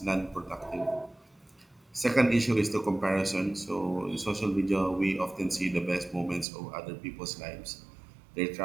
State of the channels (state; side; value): drops out; left; at 6.5 s